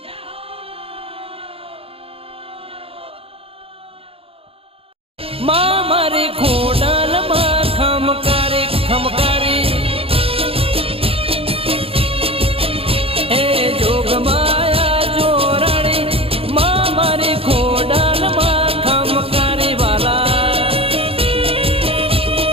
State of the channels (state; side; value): late; left; 0.27 ms